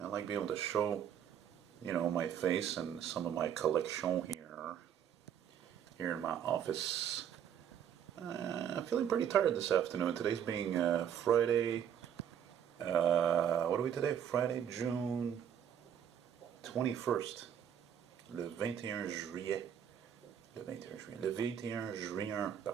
I like being able to show, my face and some of my collection here in my office. I'm feeling pretty tired this afternoon. Today's being Friday. What are we today? Friday, June 21st. Le 21 juillet. Le 21 juillet. Le 21 juin.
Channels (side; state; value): left; quieter; 9.0 dB